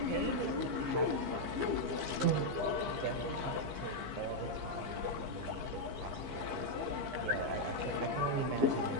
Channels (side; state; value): left; late; 15 ms